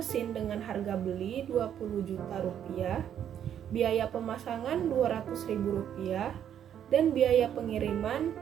dengan harga beli 20 juta rupiah, biaya pemasangan 200 ribu rupiah, dan biaya pengiriman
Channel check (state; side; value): quieter; left; 9.6 dB